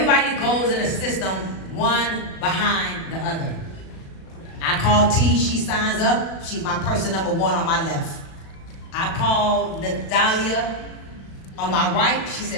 goes in a system, one behind the other. I call T, she signs up. She's my person number 1 on my left. I call Natalia on my right. She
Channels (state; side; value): late; right; 36 ms